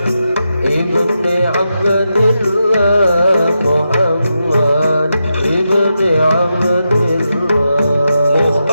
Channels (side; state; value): both; inverted; correlation -0.87